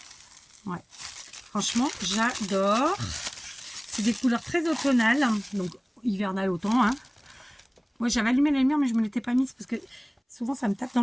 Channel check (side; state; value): both; identical; correlation 1.00